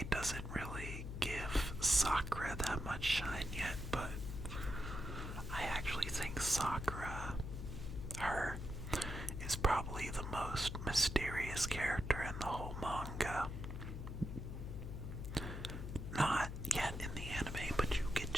doesn't really give Sakura that much shine yet, but I actually think Sakura, her, is probably the most mysterious character in the whole manga. Not yet in the anime, but you get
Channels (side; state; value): left; noise; hum, 6 dB below the sound